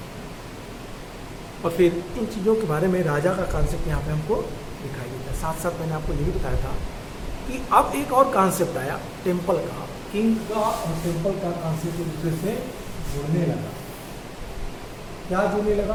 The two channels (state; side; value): identical; both; correlation 1.00